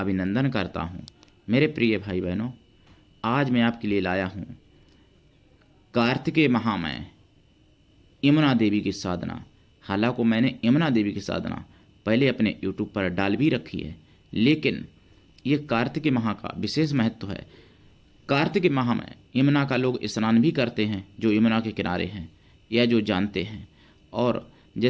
करता हूं। मेरे प्रिय भाई बहनों, आज मैं आपके लिए लाया हूं कार्तिकेय महामय यमुना देवी की साधना। हालांकि मैंने यमुना देवी की साधना पहले अपने YouTube पर डाल भी रखी है, लेकिन ये कार्तिकेय माह का विशेष महत्व है। कार्तिक माह में यमुना का लोग स्नान भी करते हैं, जो यमुना के किनारे हैं या जो जानते हैं। और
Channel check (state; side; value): identical; both; correlation 1.00